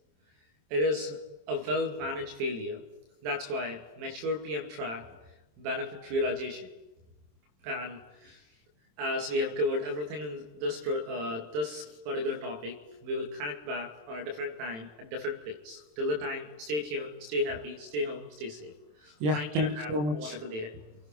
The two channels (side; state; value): left; late; 27 ms